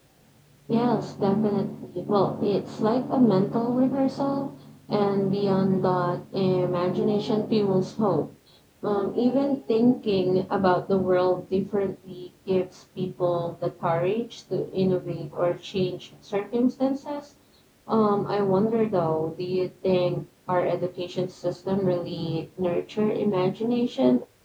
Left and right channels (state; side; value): identical; both; correlation 1.00